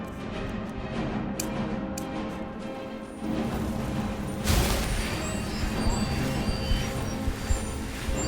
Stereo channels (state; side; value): identical; both; correlation 1.00